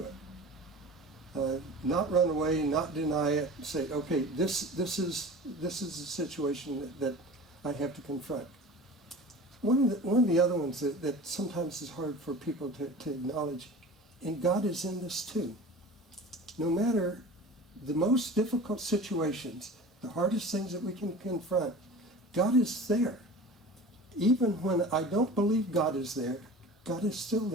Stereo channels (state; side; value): normal; both; correlation 0.37